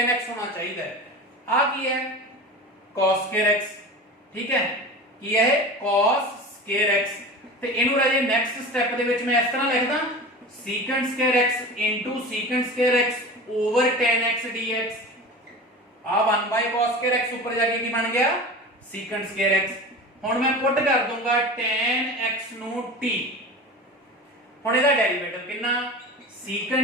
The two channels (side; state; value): both; normal; correlation 0.33